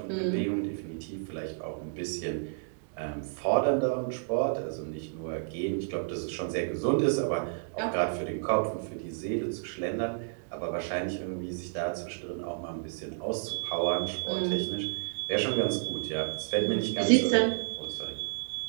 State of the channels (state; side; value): silent; left; digital silence